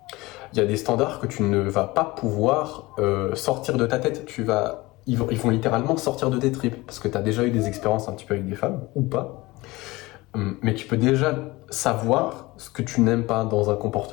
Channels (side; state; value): right; quieter; 21.0 dB